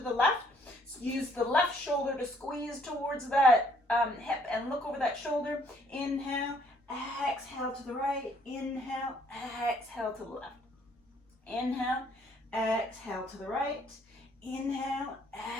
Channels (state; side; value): normal; both; correlation 0.64